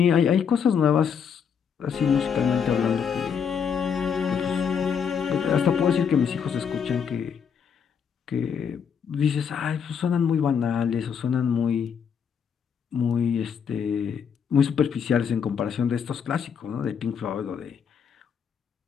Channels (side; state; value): right; quieter; 7.1 dB